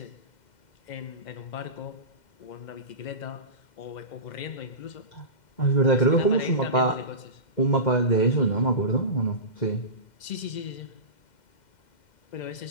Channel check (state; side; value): late; right; 2.1 ms